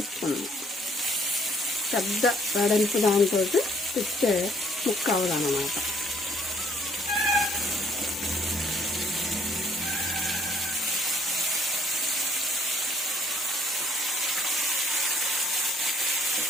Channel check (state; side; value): normal; both; correlation 0.63